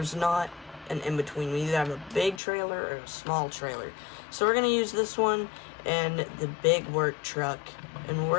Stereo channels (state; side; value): drops out; right; at 2.4 s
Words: not an in-between. We either have a big trailer or a small trailer. So we're going to use this one and the big work truck, and